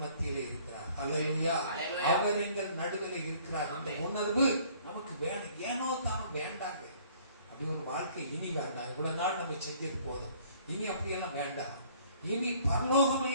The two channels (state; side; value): inverted; both; correlation -0.57